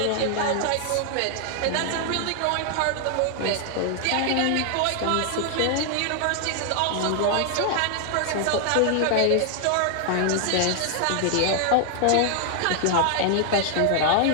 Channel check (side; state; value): both; different; correlation 0.00